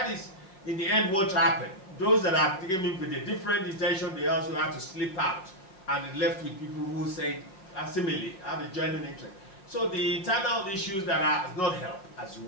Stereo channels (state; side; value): late; right; 5.4 ms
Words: is, in the end, what happened. Those that have taken in with a different intention, they also had to slip out, and it left with people who say, similarly, have a genuine interest. So the internal issues that are not helped as